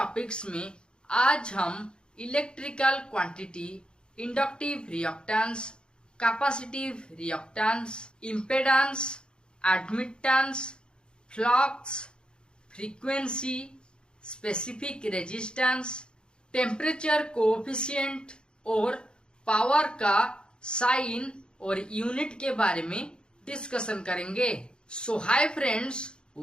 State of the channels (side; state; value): right; late; 0.051 ms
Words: में आज हम electrical quantity, inductive reactance, capacitive reactance, impedance, admittance, flux, frequency, specific resistance, temperature coefficient और power का sign और unit के बारे में डिस्कशन करेंगे। So hi friends,